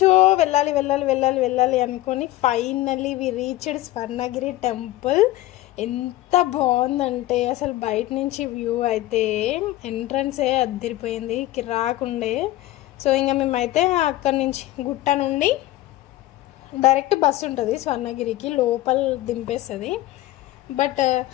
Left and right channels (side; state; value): right; quieter; 16.2 dB